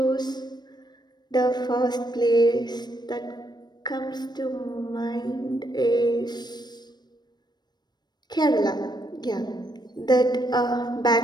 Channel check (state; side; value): late; right; 0.20 ms